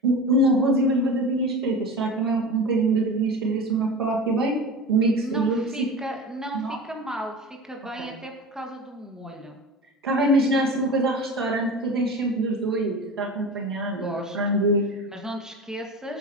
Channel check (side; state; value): both; normal; correlation 0.32